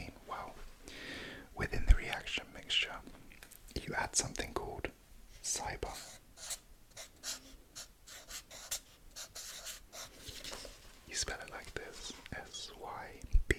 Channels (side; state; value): both; identical; correlation 1.00